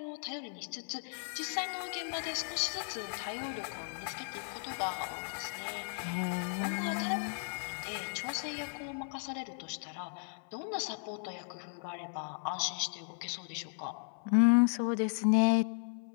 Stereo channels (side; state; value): right; silent; 54 dB below the other